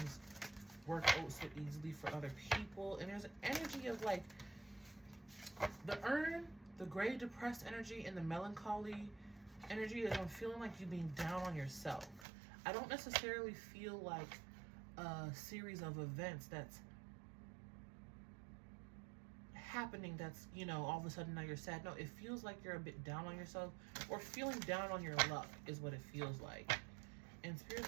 work out so easily for other people. And there's an energy of like the urn, the gray depressed energy, and the melancholy energy is I'm feeling like you being down on yourself. I don't necessarily feel like a series of events that's happening that's, you know, all of a sudden now you're sad. No, it feels like you're a bit down on yourself or feeling down on your luck is what it feels like. And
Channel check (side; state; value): left; drops out; at 12.2 s